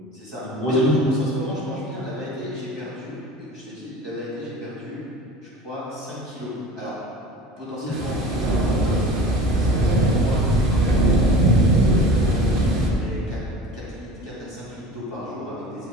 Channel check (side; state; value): both; normal; correlation 0.39